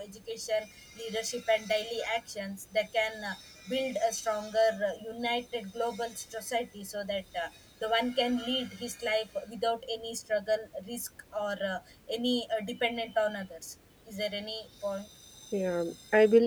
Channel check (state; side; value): identical; both; correlation 1.00